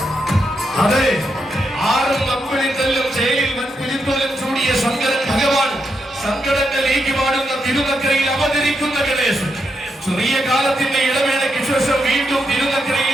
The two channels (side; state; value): both; normal; correlation 0.82